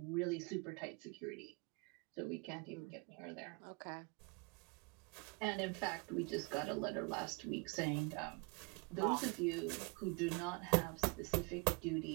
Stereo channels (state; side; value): quieter; left; 30.1 dB